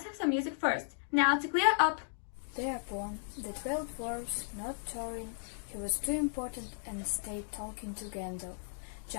have some music first. Now to clear up!" Thereupon the 12 dwarfs, not Thorin, he was too important and stayed talking to Gandalf,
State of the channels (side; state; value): right; silent; digital silence